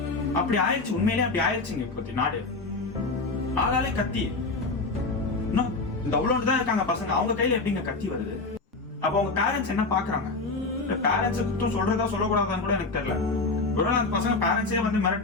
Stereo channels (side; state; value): right; quieter; 3.6 dB